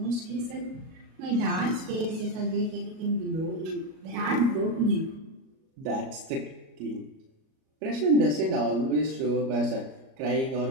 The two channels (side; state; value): left; late; 38 ms